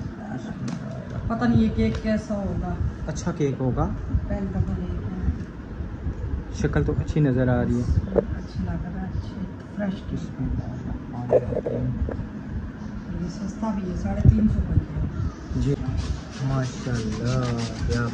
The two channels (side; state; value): both; identical; correlation 1.00